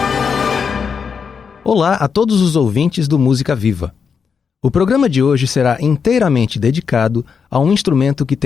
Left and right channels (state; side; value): quieter; right; 6.2 dB